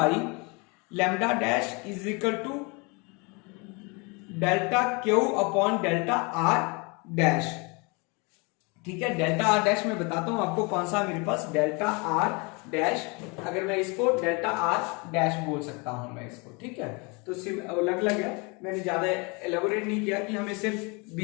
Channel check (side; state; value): right; quieter; 30.0 dB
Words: lambda dash is equal to delta q upon delta r dash। ठीक है, delta R dash मैं बताता हूं आपको कौन सा मेरे पास delta R dash, अगर मैं इसको डेल्टा आर डैश बोल सकता हूं मैं इसको। ठीक है, तो अलग है, मैंने ज्यादा एलेबोरेट नहीं किया कि हमें सिर्फ